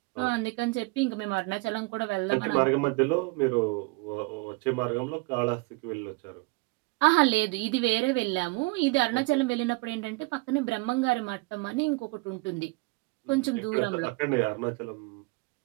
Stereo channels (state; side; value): quieter; left; 25.7 dB